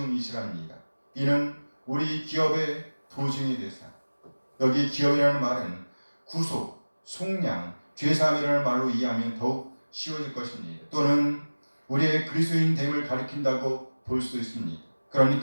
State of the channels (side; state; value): both; inverted; correlation -1.00